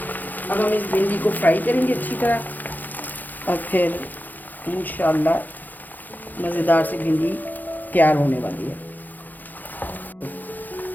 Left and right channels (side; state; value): right; late; 0.085 ms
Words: अब हम इस भिंडी को फ्राई करेंगे अच्छी तरह और फिर इंशाल्लाह मज़ेदार से भिंडी तैयार होने वाली है।